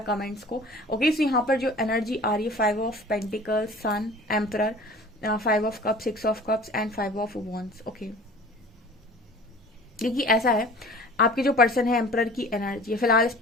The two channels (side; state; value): both; normal; correlation 0.44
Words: कमेंट्स को। ओके, सो यहाँ पर जो एनर्जी आ रही है, 5 of pentacles, sun, emperor, 5 of cups, 6 of cups and 5 of wands. Okay, देखिए ऐसा है, आपके जो पर्सन है एम्परर की एनर्जी है। फिलहाल इस